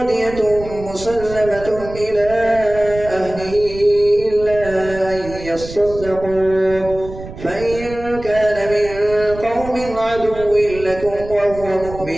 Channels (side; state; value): right; noise; rumble, 13 dB below the sound